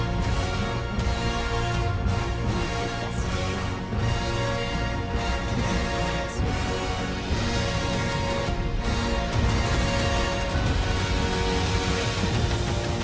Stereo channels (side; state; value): both; identical; correlation 1.00